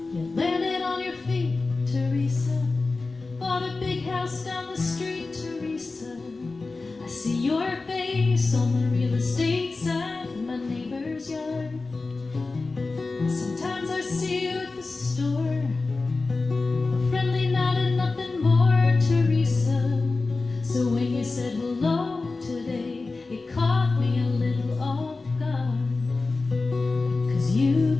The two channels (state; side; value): quieter; right; 3.7 dB